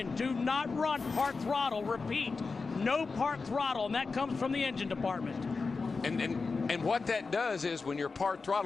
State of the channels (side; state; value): right; quieter; 4.4 dB